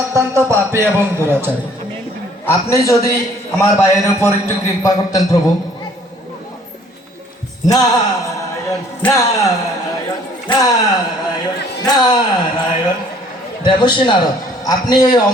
অত্যন্ত পাপী এবং দুরাচারী। আপনি যদি আমার ভাইয়ের উপর একটু কৃপা করতেন প্রভু। নারায়ণ নারায়ণ নারায়ণ নারায়ণ। দেবশ্রী নারদ, আপনি এই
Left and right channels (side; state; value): both; normal; correlation 0.57